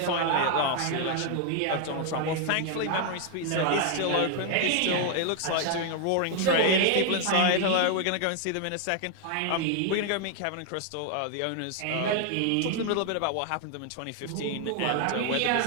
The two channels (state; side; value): different; both; correlation 0.00